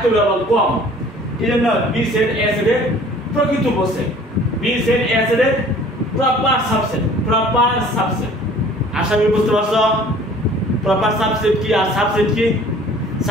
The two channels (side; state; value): both; normal; correlation 0.50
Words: হবে আবার কম এজন্য বি সেট এ সেটের প্রকৃত উপসেট বি সেট এ সেটের প্রপার সাবসেট আশা করি বুঝতে পারছো প্রপার সাবসেট কি আর সাবসেট কি